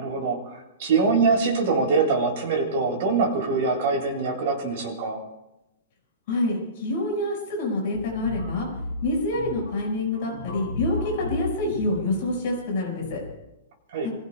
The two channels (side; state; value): both; inverted; correlation -0.33